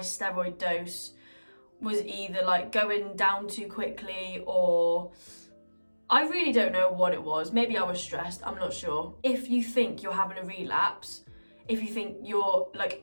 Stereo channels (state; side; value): inverted; both; correlation -1.00